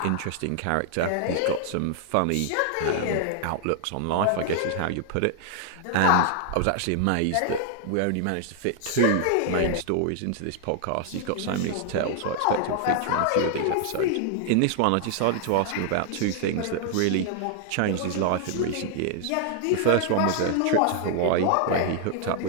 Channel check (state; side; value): different; both; correlation 0.00